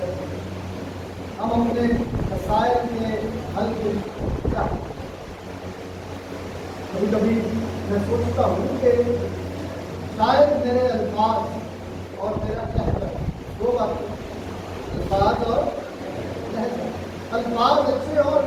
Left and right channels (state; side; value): identical; both; correlation 1.00